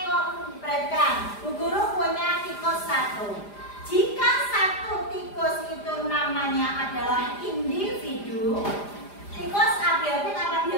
Perhatikan, Bu Guru punya tikus satu. Jika satu tikus itu namanya adalah individu, tikus abiotik apa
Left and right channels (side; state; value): right; late; 4.9 ms